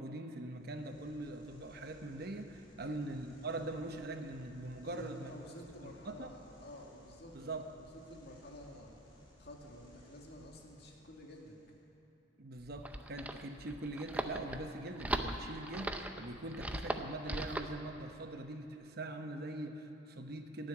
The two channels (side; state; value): both; normal; correlation 0.48